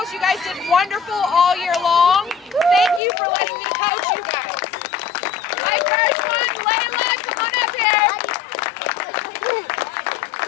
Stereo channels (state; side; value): drops out; right; at 3.0 s